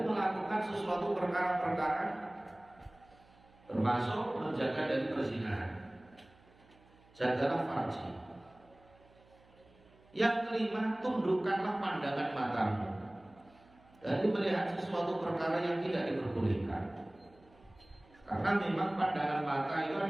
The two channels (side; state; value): right; noise; hum, 28 dB below the sound